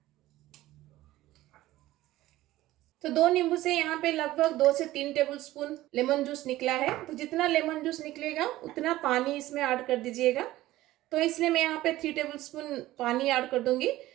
तो 2 नींबू से यहाँ पे लगभग 2 से 3 टेबल स्पून लेमन जूस निकला है। तो जितना लेमन जूस निकलेगा उतना पानी इसमें ऐड कर दीजिएगा। तो इसलिए मैं यहाँ पे 3 टेबल स्पून पानी ऐड कर दूंगी।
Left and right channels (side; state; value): left; quieter; 16.1 dB